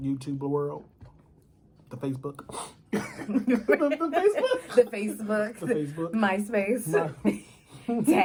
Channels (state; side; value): identical; both; correlation 1.00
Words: YouTube world, the Facebook. the Facebook. The Facebook. The Facebook. MySpace.